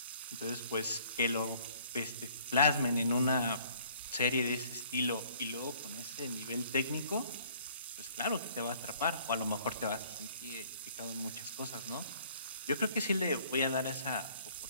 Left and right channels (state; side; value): inverted; both; correlation -0.58